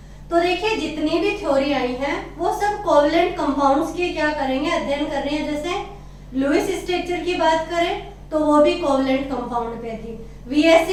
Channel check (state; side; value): identical; both; correlation 1.00